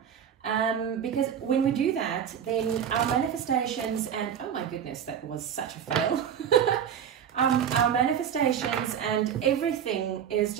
because when we do that, then our manifestations and, oh my goodness, that was such a fail. Our manifestations and everything is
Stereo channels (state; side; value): quieter; left; 8.6 dB